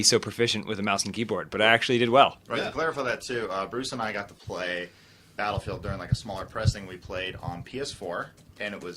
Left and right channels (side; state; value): both; identical; correlation 1.00